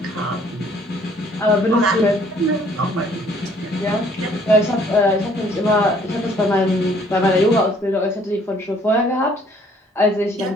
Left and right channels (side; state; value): both; normal; correlation 0.60